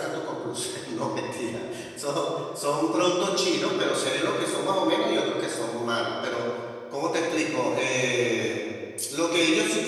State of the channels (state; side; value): identical; both; correlation 1.00